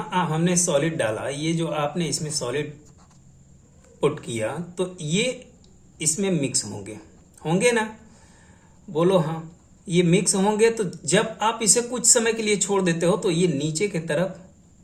हमने सॉलिड डाला, ये जो आपने इसमें सॉलिड पुट किया तो ये इसमें मिक्स होंगे ना? बोलो हाँ. ये मिक्स होंगे तो जब आप इसे कुछ समय के लिए छोड़ देते हो तो ये नीचे की तरफ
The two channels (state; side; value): identical; both; correlation 1.00